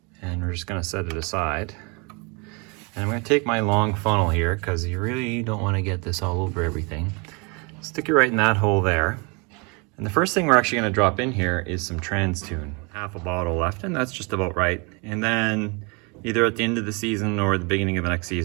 and we're just gonna set it aside. And I'm going to take my long funnel here because you really don't want to get this all over everything. Stick it right in that hole there. And the first thing we're actually going to drop in here is some Trans Tune. Half a bottle left, and that's just about right. And then either at the end of the season or the beginning of the next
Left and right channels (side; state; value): left; quieter; 31.1 dB